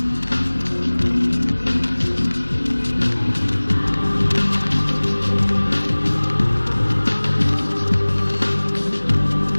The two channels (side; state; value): both; inverted; correlation -1.00